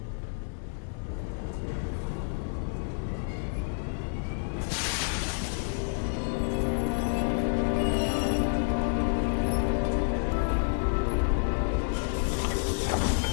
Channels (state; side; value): silent; right; 58 dB below the other